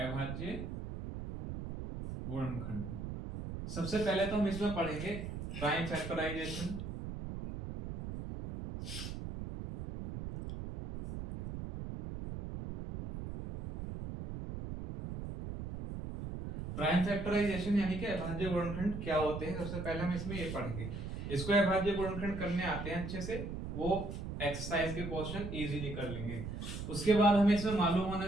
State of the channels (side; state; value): right; noise; rumble, 6 dB below the sound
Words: गुणनखंड सबसे पहले तो हम इसमें पढ़ेंगे प्राइम फैक्टराइजेशन। प्राइम फैक्टराइजेशन यानी कि अभाज्य गुणनखंड क्या होते हैं, सबसे पहले हम इसमें ये पढ़ेंगे। इसको अभाज्य गुणनखंड करने आते हैं अच्छे से, वो एक्सरसाइज के क्वेश्चन इजीली कर लेंगे। उसके बाद हमें इसमें मालूम होना